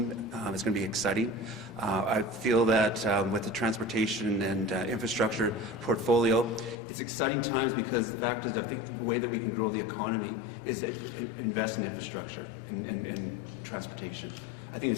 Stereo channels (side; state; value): right; drops out; at 6.8 s